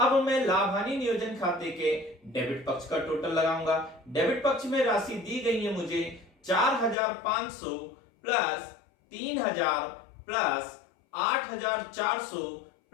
मैं लाभ हानि नियोजन खाते के डेबिट पक्ष का टोटल लगाऊंगा। डेबिट पक्ष में राशि दी गई है मुझे 4500 प्लस 3000 प्लस 8400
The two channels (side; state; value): right; drops out; at 7.0 s